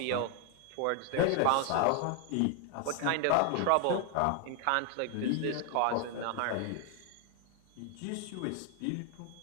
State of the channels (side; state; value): both; different; correlation 0.00